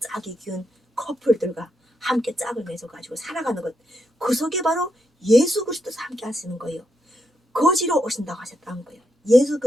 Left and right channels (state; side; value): normal; both; correlation 0.81